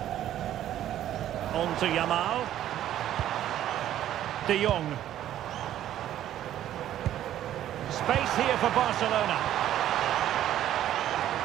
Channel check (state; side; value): quieter; left; 12.0 dB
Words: On to Yamal. De Jong. Space here for Barcelona.